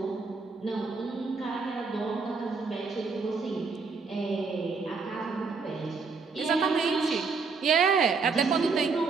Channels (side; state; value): left; quieter; 4.7 dB